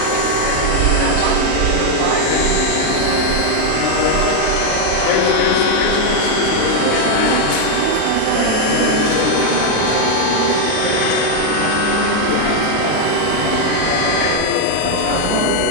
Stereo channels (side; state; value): both; different; correlation 0.01